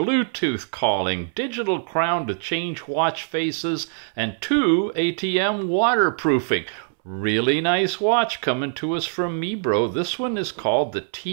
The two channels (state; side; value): silent; left; 63 dB below the other